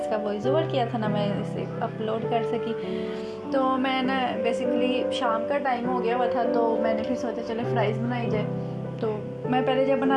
वॉइस ओवर किया था, ना मैं इसे अपलोड कर सकी। तो मैं ना बेसिकली शाम का टाइम हो गया हुआ था, तो मैंने फिर सोचा चले फ़्राइज़ बनाई जाए। तो मैं पहले जब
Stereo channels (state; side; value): identical; both; correlation 1.00